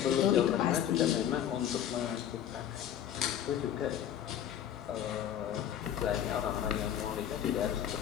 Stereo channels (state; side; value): quieter; right; 10.2 dB